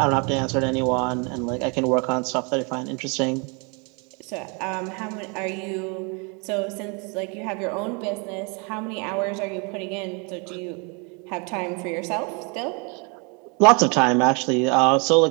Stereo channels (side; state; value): left; quieter; 33.3 dB